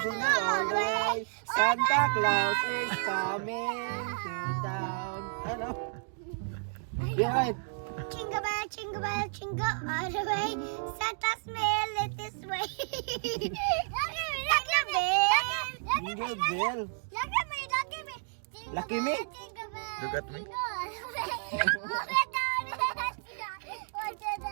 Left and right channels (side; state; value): left; silent; digital silence